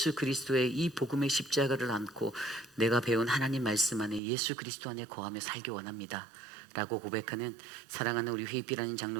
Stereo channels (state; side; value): drops out; left; at 4.2 s